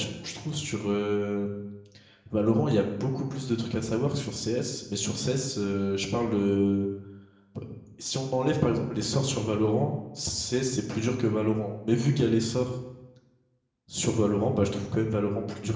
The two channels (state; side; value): identical; both; correlation 1.00